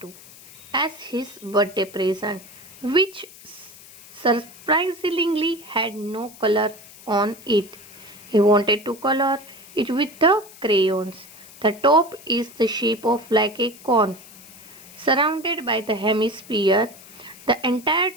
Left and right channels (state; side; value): noise; left; hiss, 20 dB below the sound